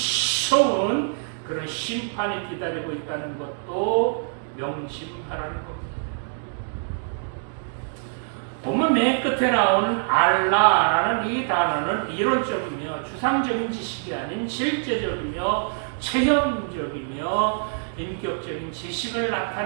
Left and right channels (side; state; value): left; silent; digital silence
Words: 그런 심판이 기다리고 있다는 것도 명심하라는 겁니다. 본문 맨 끝에 나오는 알라라는 이 단어는 이론적이며 추상적인 지식이 아닌 실제적이며 체험적이며 인격적인 지식을